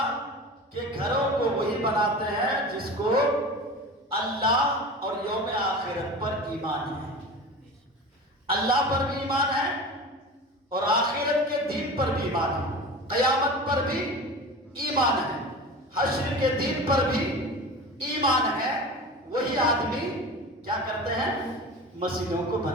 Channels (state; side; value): normal; both; correlation 0.33